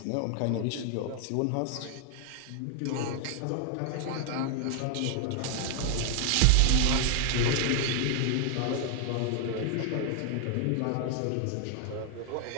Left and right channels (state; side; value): different; both; correlation 0.00